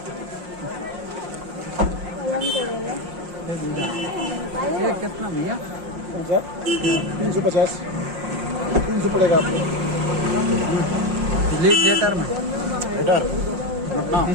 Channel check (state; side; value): late; left; 5.6 ms